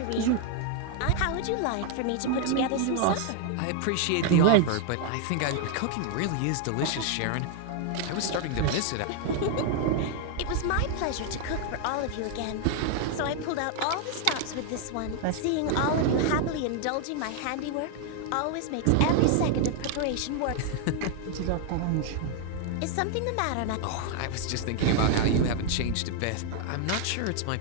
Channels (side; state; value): both; different; correlation 0.00